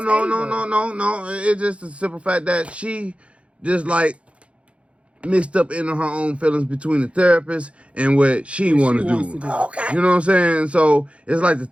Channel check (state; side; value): late; left; 0.061 ms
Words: no, table. no. It's just the simple fact that she just like mixed up into her own feelings between the therapist and what she want to wants do. to do. Okay. You know what I'm saying? So it's like the